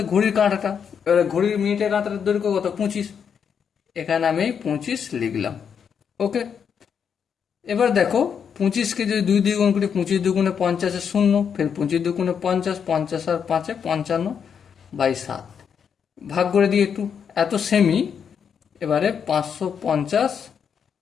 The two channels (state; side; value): quieter; right; 7.3 dB